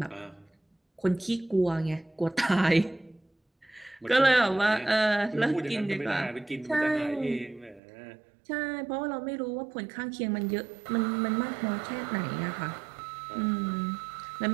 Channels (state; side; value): drops out; left; at 7.8 s